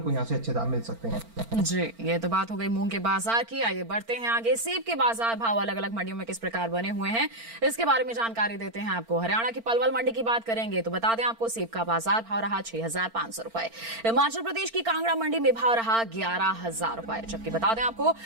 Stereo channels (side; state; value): left; late; 4.4 ms